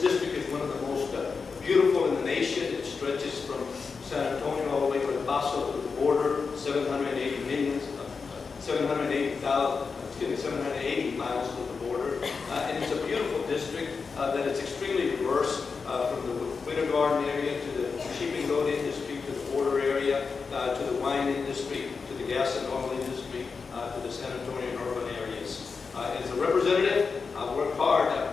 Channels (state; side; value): quieter; right; 5.0 dB